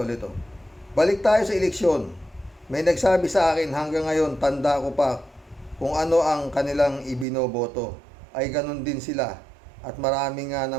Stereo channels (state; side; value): drops out; left; at 7.2 s